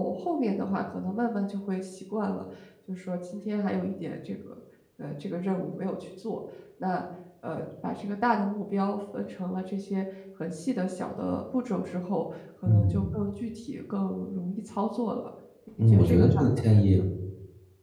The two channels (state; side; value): identical; both; correlation 1.00